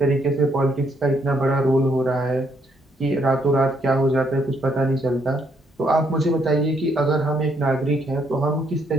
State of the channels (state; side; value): normal; both; correlation 0.71